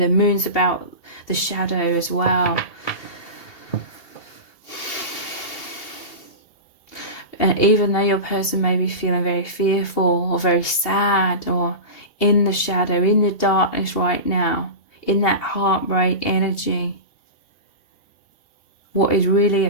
moon's about the shadow as well. And even though your person may be feeling very fearful or very sad or in the shadow, in the darkness right now, in that heartbreak energy, what is really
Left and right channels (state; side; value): late; right; 2.8 ms